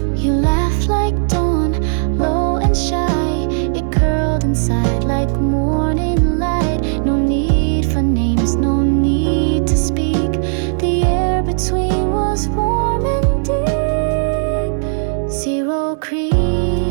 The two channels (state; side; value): silent; left; 66 dB below the other